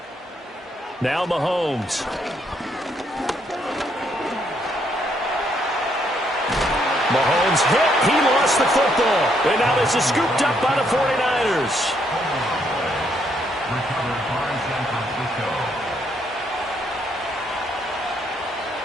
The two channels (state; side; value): normal; both; correlation 0.73